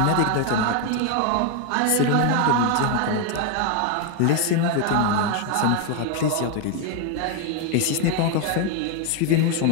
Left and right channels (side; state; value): both; different; correlation 0.01